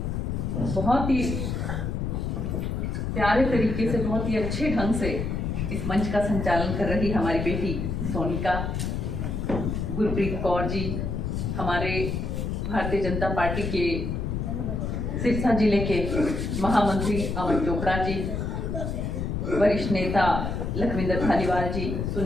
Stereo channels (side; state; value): left; noise; rumble, 2 dB below the sound